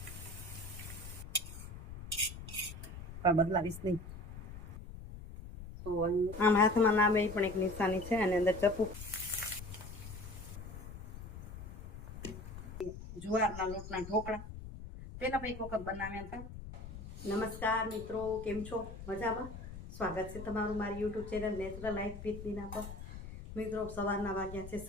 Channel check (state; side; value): noise; left; rumble, 11 dB below the sound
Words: પણ બદલાવીશ નહીં. તો આમ હાથમાં નામે એ પણ એક નિશાની છે અને અંદર ચપ્પુ. જુવારના લોટના ઢોકળા પેલા પણ એક વખત બનાવ્યા હતા. નમસ્કાર મિત્રો, કેમ છો? મજામાં? સ્વાગત છે તમારું મારી YouTube channel natural life with Meena પર. મિત્રો સવારના વાગ્યા છે